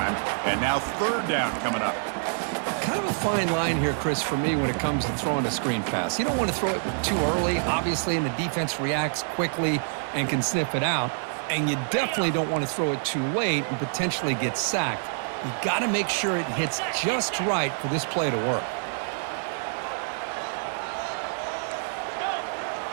And now third down coming up. Kind of a fine line here, Chris, for me when it comes to throwing a screen pass. You don't want to throw it too early, obviously, and the defense reacts quickly and can sniff it out. And you definitely don't want to throw it too late and potentially get sacked. You got to make sure it hits just right for this play to work.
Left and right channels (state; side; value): silent; left; digital silence